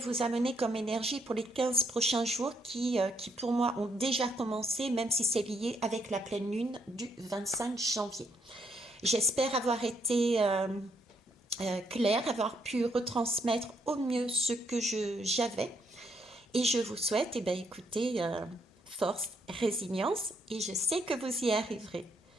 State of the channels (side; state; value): both; normal; correlation 0.73